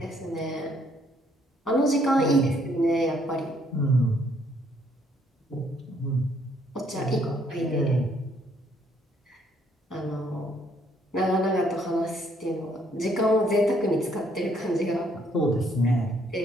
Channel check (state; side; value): normal; both; correlation 0.68